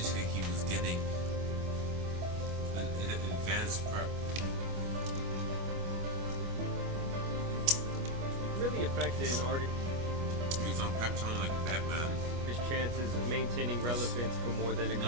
he was getting an advanced prep. Really affected an artist. He was on prep time like Batman. His chances of maintaining relevance for more than a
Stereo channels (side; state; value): left; late; 25 ms